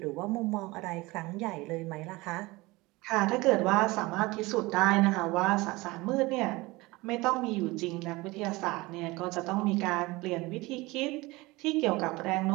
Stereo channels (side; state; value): left; quieter; 22.0 dB